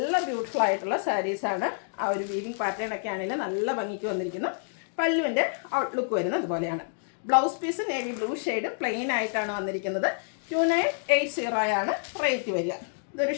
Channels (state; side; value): silent; right; digital silence